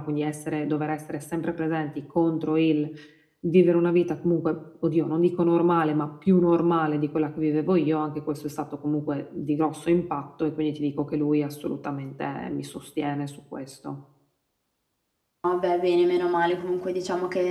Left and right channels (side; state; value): both; identical; correlation 1.00